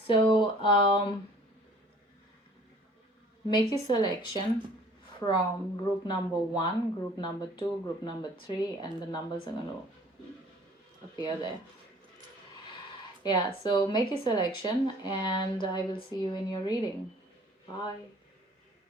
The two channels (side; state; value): both; normal; correlation 0.53